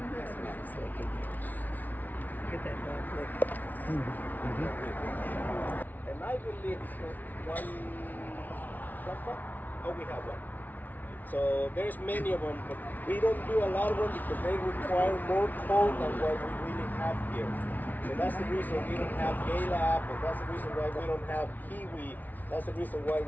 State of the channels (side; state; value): right; late; 0.081 ms